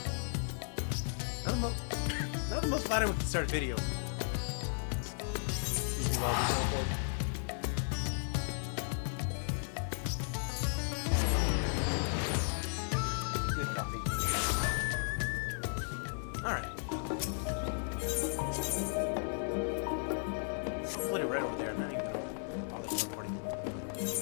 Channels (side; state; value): right; silent; digital silence